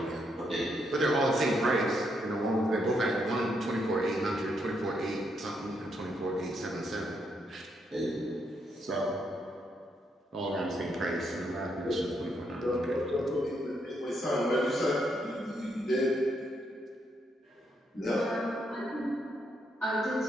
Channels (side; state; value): both; normal; correlation 0.77